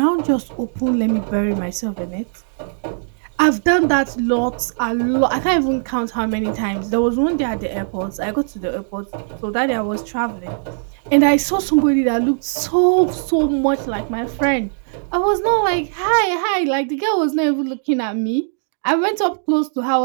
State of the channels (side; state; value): left; silent; digital silence